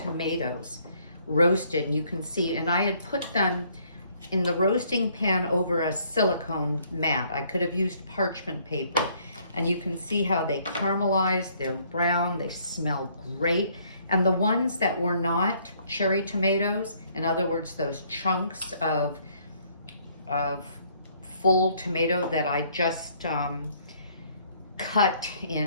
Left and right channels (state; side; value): inverted; both; correlation -0.64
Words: roasted, and you can see, and I had put them in the roasting pan over a silicone mat. I could have used parchment paper, and you can see how they caramelize, they're brown, they smell great, And the ones that were not cherry tomatoes, in other words, those chunks of full tomato that I just cut